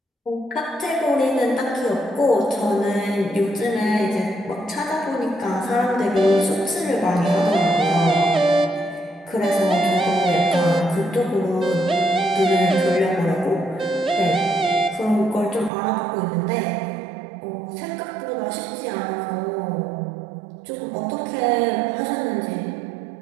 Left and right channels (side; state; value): left; drops out; at 15.7 s